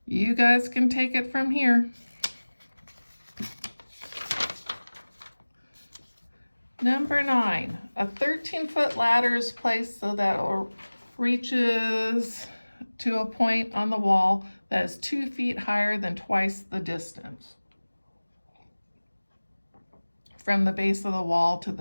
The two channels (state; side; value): inverted; both; correlation -1.00